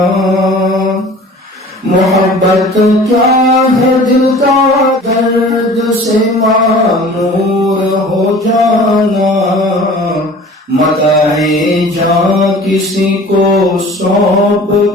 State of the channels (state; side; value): normal; both; correlation 0.44